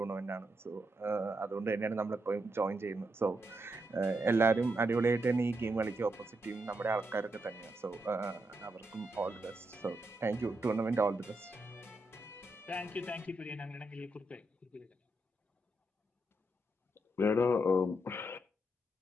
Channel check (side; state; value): both; normal; correlation 0.82